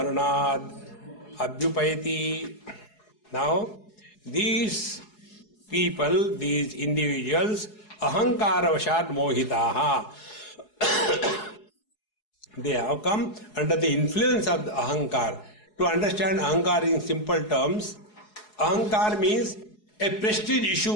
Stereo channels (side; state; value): right; late; 4.7 ms